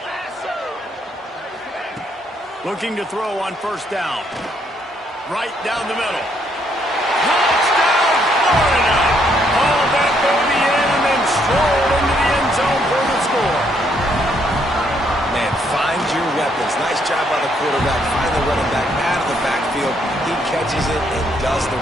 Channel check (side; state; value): both; normal; correlation 0.71